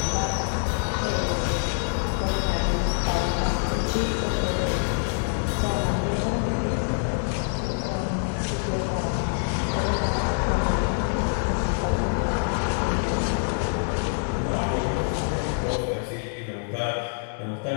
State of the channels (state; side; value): silent; right; 60 dB below the other